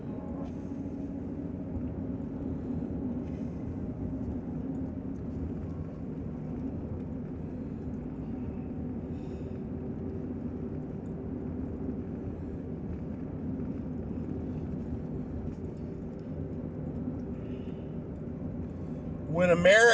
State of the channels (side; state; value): both; identical; correlation 1.00